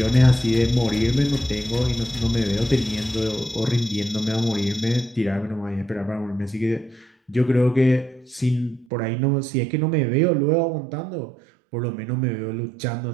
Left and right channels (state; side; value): drops out; left; at 8.8 s